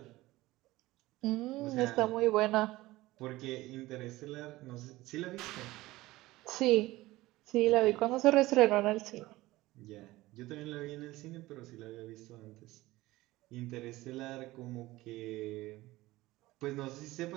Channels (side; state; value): left; quieter; 18.4 dB